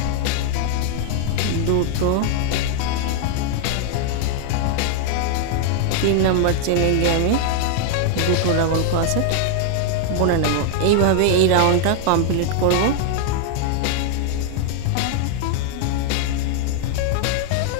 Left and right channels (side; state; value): both; different; correlation 0.00